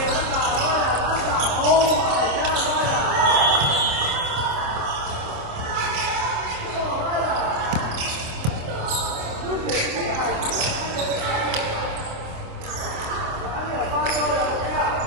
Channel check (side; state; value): left; late; 26 ms